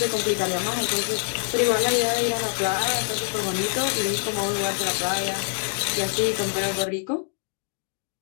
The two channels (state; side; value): silent; right; 62 dB below the other